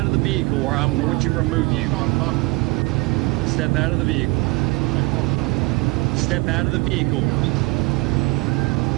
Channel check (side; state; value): left; quieter; 25.8 dB